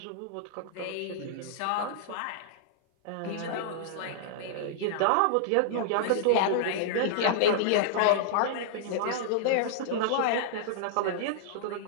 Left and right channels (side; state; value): both; different; correlation -0.01